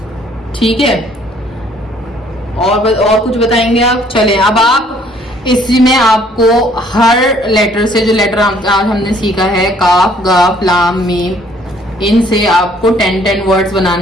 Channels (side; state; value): both; normal; correlation 0.61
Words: ठीक है। और कुछ बताएंगे आप? चलें, अब आप इसमें आपको हर लेटर से, जो लेटर आज हमने सीखा है, काफ गाफ लाम मीम, इनसे आपको 10 वर्ड्स